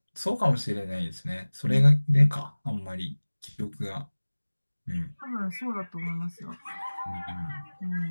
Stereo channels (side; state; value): both; inverted; correlation -1.00